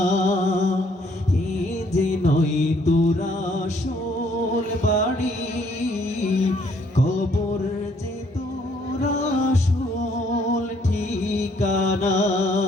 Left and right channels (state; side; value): normal; both; correlation 0.66